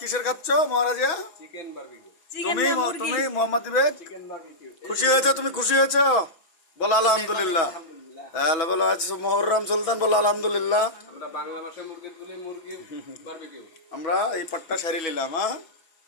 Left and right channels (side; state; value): right; late; 6.0 ms